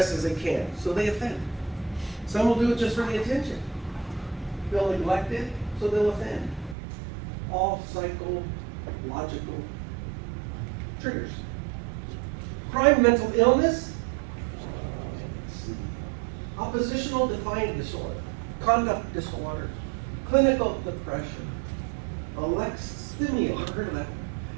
as they can, so they offend. Some will do it just for the attention. Feel neglected, so they'll offend. All psychological triggers. Crime, mental illness, oppositional defiant disorder, conduct disorders, clinical depression, alexithymia, I've heard of that.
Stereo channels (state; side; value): drops out; left; at 6.8 s